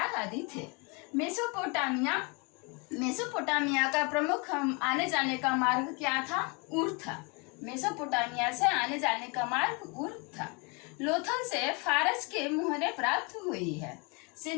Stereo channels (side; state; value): right; quieter; 31.2 dB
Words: आदि थे। मेसोपोटामिया का प्रमुख आने जाने का मार्ग क्या था? ऊर था। मेसोपोटामिया से आने जाने का मार्ग ऊर था। लोथल से फारस के मुहरे प्राप्त हुई है।